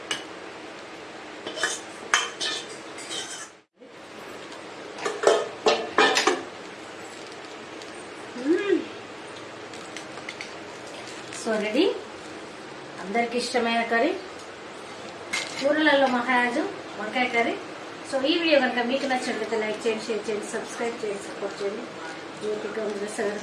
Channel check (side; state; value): both; identical; correlation 1.00